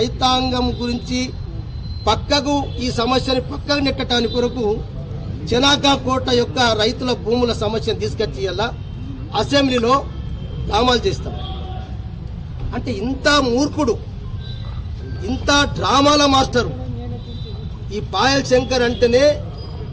గురించి పక్కకు ఈ సమస్యని పక్కకు నెట్టడానికి కొరకు చెనాకా కోట యొక్క రైతుల భూముల సమస్యను తీసుకొచ్చి ఇలా అసెంబ్లీలో డ్రామాలు చేస్తాం. అంటే ఇంత మూర్ఖుడు, ఇంత డ్రామాల మాస్టరు ఈ పాయల్ శంకర్ అంటేనే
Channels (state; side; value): identical; both; correlation 1.00